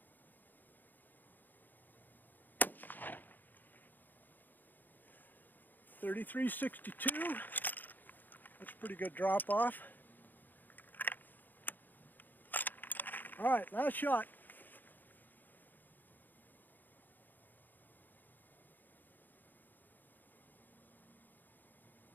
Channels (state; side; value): late; right; 0.087 ms